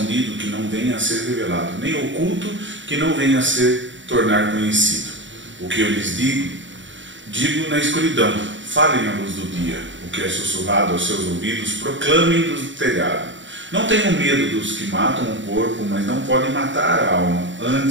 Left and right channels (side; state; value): left; late; 0.55 ms